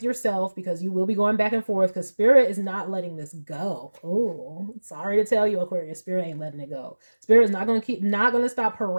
yourself, because you will be going back and forth, because Spirit is not letting this go. Oh, sorry to tell you, Aquarius, Spirit ain't letting it go. Spirit is not going to stop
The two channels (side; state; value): both; inverted; correlation -1.00